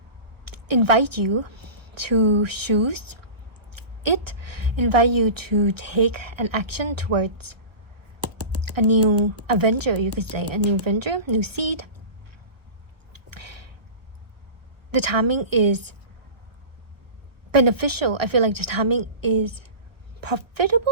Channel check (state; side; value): late; left; 1.3 ms